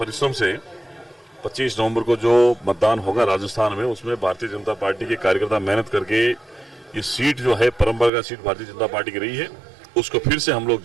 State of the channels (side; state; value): left; drops out; at 8.1 s